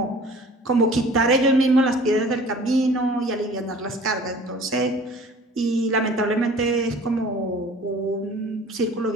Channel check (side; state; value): both; normal; correlation 0.47